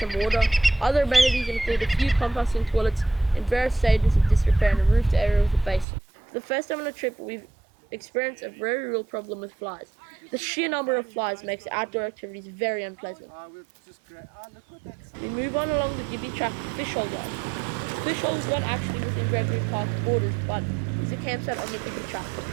water. Other amenities include a few composting toilets in various stages of disrepair and a roofed area with a basin. For the first time on a trip, we've experienced a very real problem with flies. The sheer number of flies makes outdoor activities very unpleasant. We move on along the Gibby track to Fishhole Yard. Fishhole is not actually within Gregory Park borders, but is a campsite on the Gibby track.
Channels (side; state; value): left; drops out; at 5.9 s